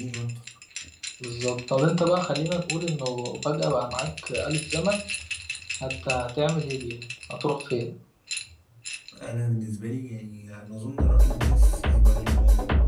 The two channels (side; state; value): both; identical; correlation 1.00